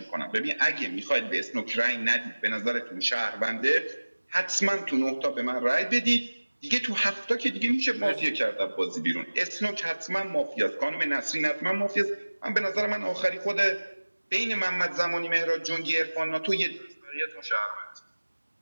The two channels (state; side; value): inverted; both; correlation -1.00